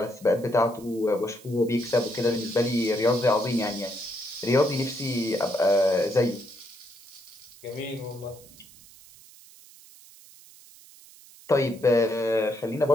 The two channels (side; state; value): right; noise; hiss, 22 dB below the sound